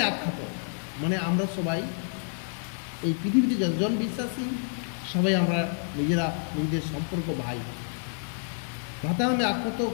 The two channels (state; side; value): silent; right; digital silence